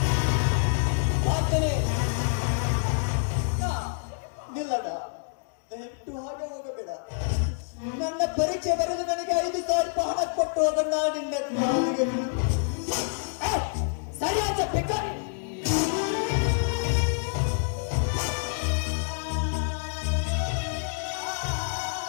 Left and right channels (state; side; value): silent; right; digital silence